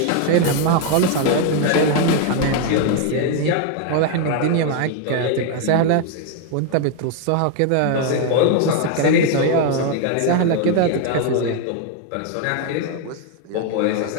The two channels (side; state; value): both; different; correlation 0.00